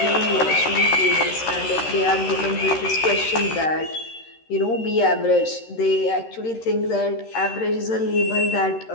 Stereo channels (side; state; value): right; late; 13 ms